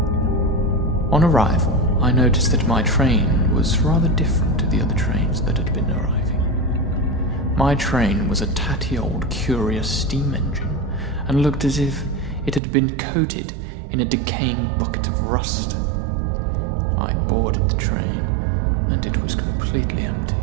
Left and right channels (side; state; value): left; drops out; at 12.6 s